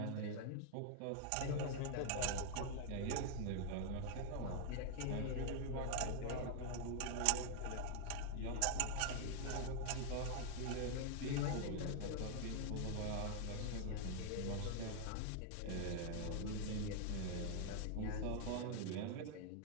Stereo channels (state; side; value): different; both; correlation 0.00